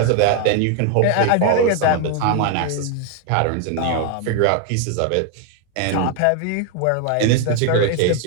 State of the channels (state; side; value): different; both; correlation 0.01